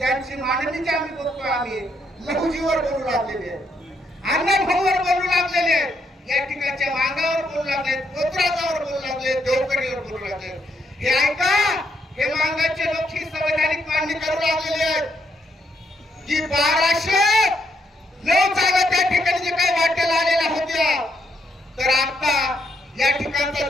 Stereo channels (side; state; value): both; normal; correlation 0.76